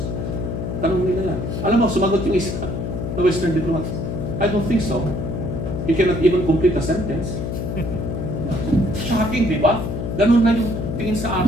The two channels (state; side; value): noise; left; hum, 3 dB below the sound